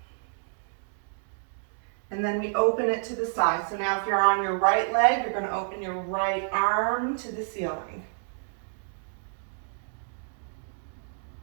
And then we open it to the side. So now if you're on your right leg, you're going to open your right arm to the ceiling.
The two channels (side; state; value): left; silent; digital silence